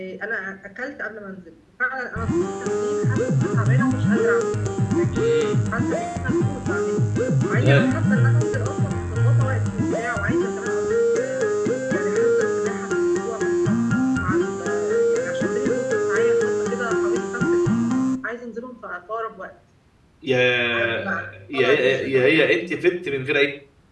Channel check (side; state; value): both; identical; correlation 1.00